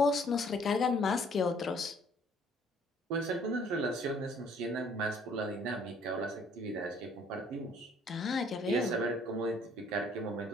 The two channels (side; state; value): both; normal; correlation 0.59